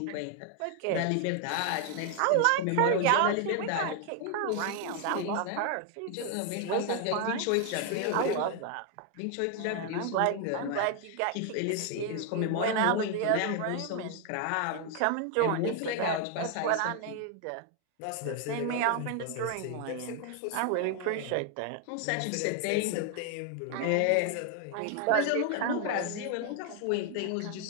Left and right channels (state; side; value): different; both; correlation 0.00